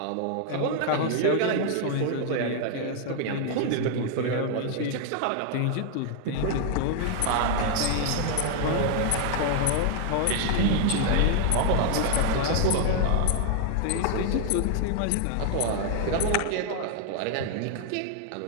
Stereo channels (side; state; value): both; different; correlation 0.00